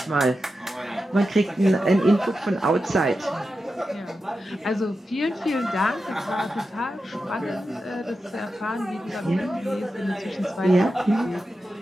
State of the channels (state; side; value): normal; both; correlation 0.90